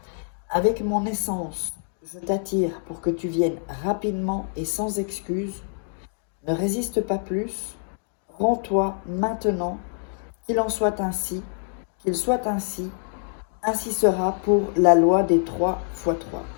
Avec mon essence, je t'attire pour que tu viennes rapidement et sans excuse. Ne résiste pas plus, rends-toi maintenant, qu'il en soit ainsi, qu'il soit ainsi, ainsi sera pour la loi des 3 x 3.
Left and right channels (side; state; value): right; silent; 58 dB below the other